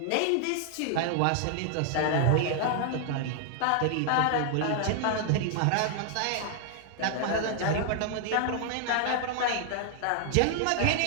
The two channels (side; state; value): both; different; correlation 0.00